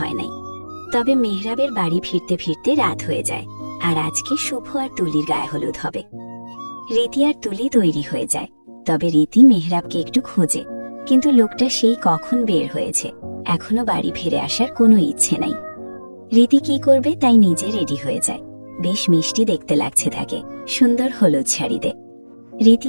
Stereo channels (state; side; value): inverted; both; correlation -1.00